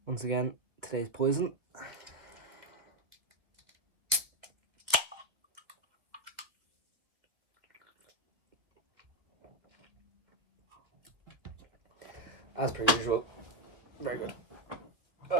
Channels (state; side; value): late; left; 1.8 ms